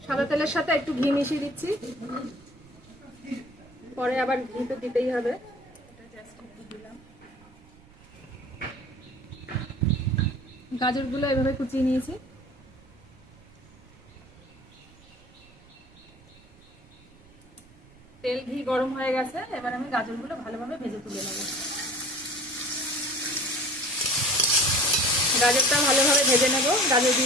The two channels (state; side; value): noise; right; rumble, 25 dB below the sound